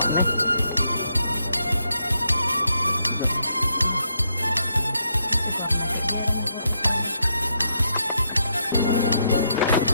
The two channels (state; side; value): inverted; both; correlation -0.78